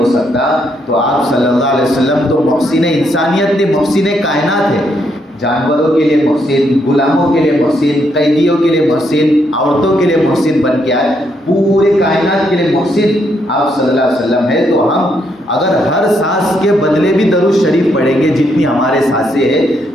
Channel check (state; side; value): normal; both; correlation 0.76